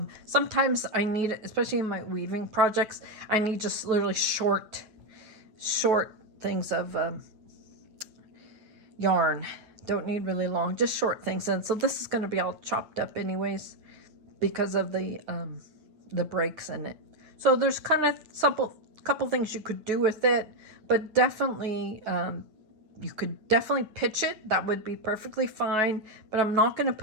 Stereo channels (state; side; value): late; left; 9.1 ms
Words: sometimes I need it, especially in my weaving projects, I need just literally short things of yarn. Don't need really long, just short things. And so this is going to be all chopped up anyways because of the breaks in it. So there's kind of couple things you could do with it, but definitely you could definitely pitch it. That would be perfectly fine. But I'm not going to